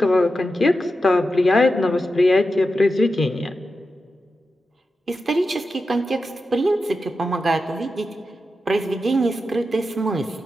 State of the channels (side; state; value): both; normal; correlation 0.90